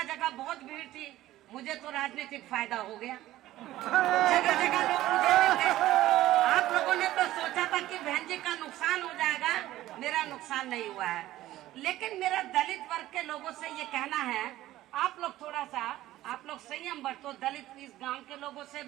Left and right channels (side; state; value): left; quieter; 15.1 dB